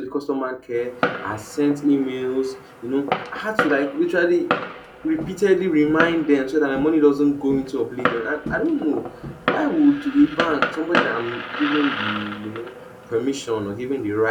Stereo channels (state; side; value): identical; both; correlation 1.00